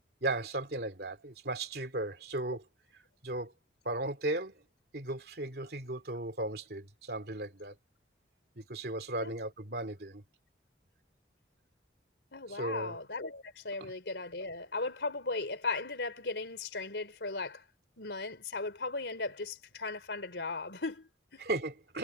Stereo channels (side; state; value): both; normal; correlation -0.16